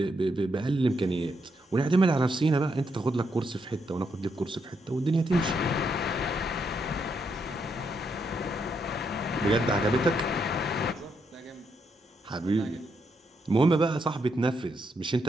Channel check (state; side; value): normal; both; correlation 0.79